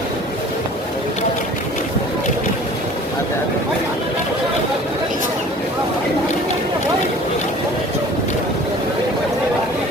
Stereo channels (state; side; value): normal; both; correlation 0.47